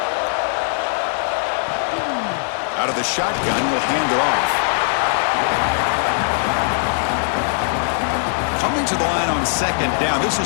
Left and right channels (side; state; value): right; silent; digital silence